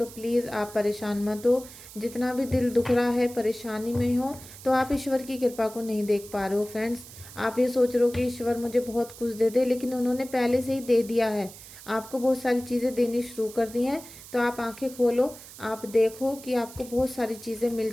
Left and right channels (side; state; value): right; noise; hiss, 17 dB below the sound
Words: प्लीज़ आप परेशान मत हो। जितना भी दिल दुख रहा है, परेशानी में हो, तो आप ईश्वर की कृपा को नहीं देख पा रहे हो फ्रेंड्स। आप ये सोच रहे हो कि ईश्वर मुझे बहुत कुछ दे दे, लेकिन उन्होंने पहले से ही दे दिया है, आपको बहुत सारी चीज़ें देनी शुरू कर दी हैं। तो आप आंखें खोलो, आप देखो कि आपको बहुत सारी चीज़ें मिल